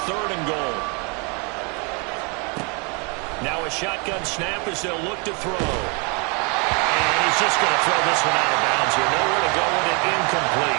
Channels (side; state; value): left; quieter; 33.0 dB